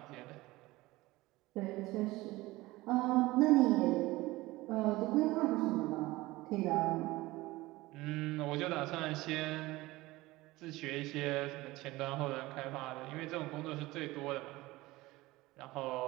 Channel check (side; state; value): left; quieter; 19.5 dB